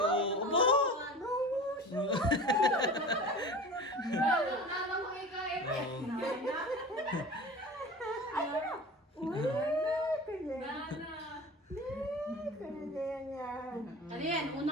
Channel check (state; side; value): normal; both; correlation 0.36